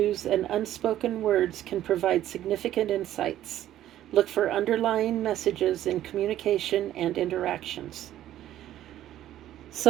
and unspoken words can provide significant insights. Look for underlying messages in communication and interactions.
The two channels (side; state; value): left; quieter; 12.7 dB